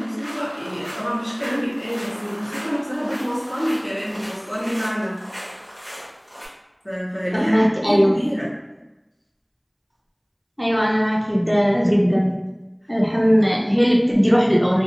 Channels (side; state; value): both; identical; correlation 1.00